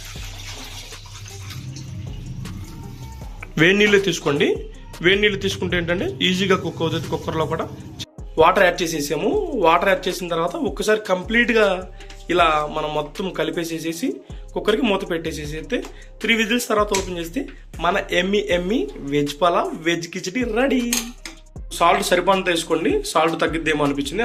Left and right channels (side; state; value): both; identical; correlation 1.00